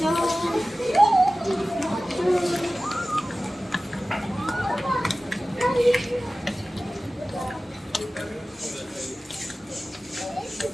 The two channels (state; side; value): normal; both; correlation 0.96